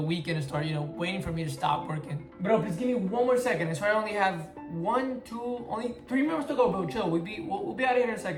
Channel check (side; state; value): both; identical; correlation 1.00